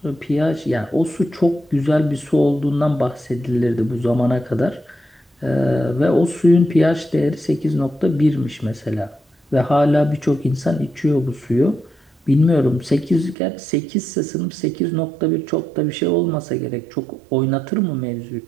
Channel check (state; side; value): drops out; left; at 13.4 s